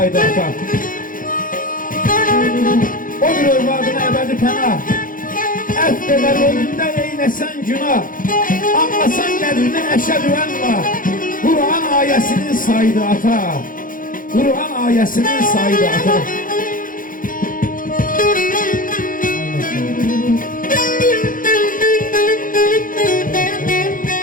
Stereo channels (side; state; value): right; late; 0.40 ms